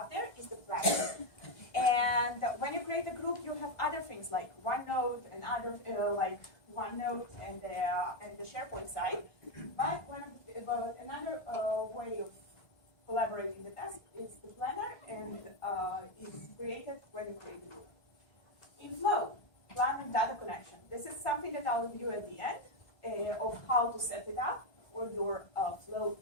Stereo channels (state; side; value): late; right; 1.6 ms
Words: there is the planner. And when you create a group, you have other things like OneNote and other like OneNote and the SharePoint side. But another way of collaborating the task is the planner, and is created when you create a group. In Flow, plan and data connection. This is something that I'll review at the end of how to set it up for your Flow